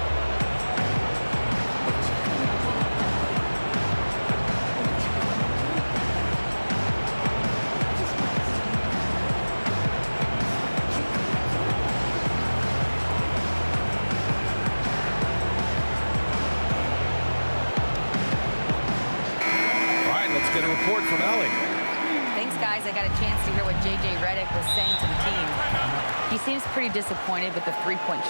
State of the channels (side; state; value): both; inverted; correlation -1.00